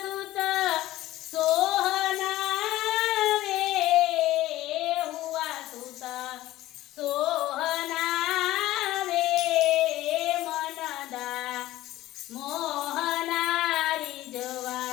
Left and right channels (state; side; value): quieter; right; 15.9 dB